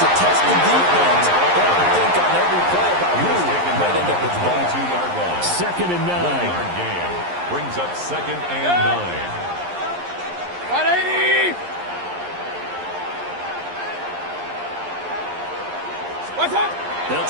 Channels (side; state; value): left; late; 11 ms